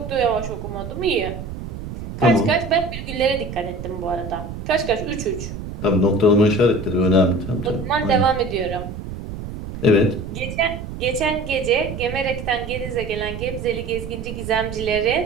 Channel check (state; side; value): noise; right; rumble, 8 dB below the sound